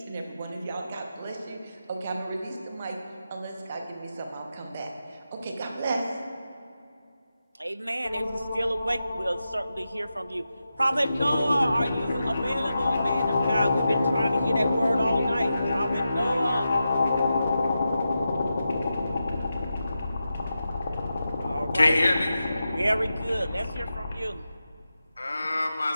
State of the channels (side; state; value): both; inverted; correlation -0.90